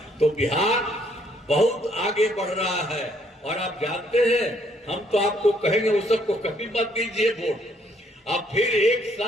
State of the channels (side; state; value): both; normal; correlation 0.67